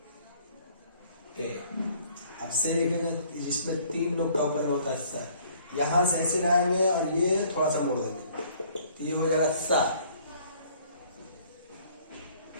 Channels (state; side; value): inverted; both; correlation -0.58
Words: ते। अब से लिखेंगे जिसमें तीन नुक्ता ऊपर में होता है सा, यहां से ऐसे लाएंगे और ये थोड़ा सा मोड़ देंगे तो ये हो जाएगा सा